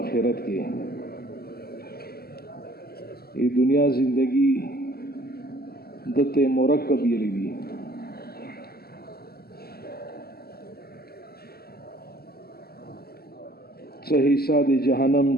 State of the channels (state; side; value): late; right; 0.45 ms